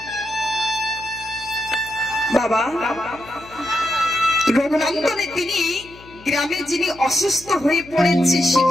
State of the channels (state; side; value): noise; left; hum, 21 dB below the sound